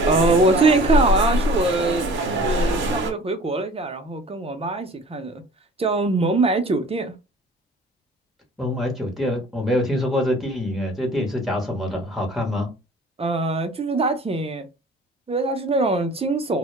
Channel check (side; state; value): both; normal; correlation 0.47